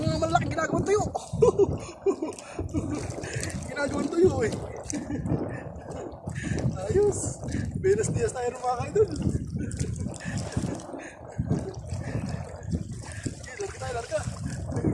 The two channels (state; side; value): identical; both; correlation 1.00